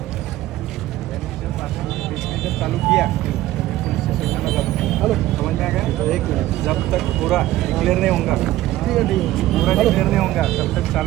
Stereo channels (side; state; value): left; quieter; 15.5 dB